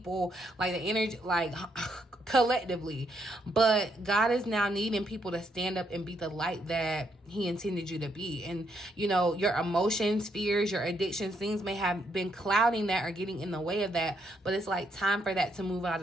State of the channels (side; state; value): both; normal; correlation 0.75